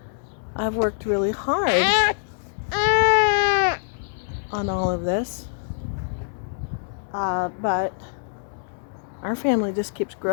I've worked really hard on all of this. But our family just keeps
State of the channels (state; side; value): silent; right; 62 dB below the other